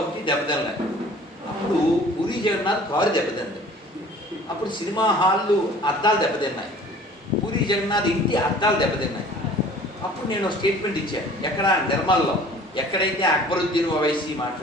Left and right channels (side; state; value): both; normal; correlation 0.49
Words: ఒకటి దెబ్బతిన్నాయి. అప్పుడు పూరి జగన్నాథ్ కారు దెబ్బతింది. అప్పుడు సినిమా హాళ్ళు అద్దాలు దెబ్బతిన్నాయి. పూరి జగన్నాథ్ ఇంటి అద్దాలు దెబ్బతిన్నాయి. అప్పుడు నేను స్టేట్మెంట్ ఇచ్చాను. ఎక్కడ నిర్మల్లో ఎక్కడైతే అక్బరుద్దీన్ ఓవైసీ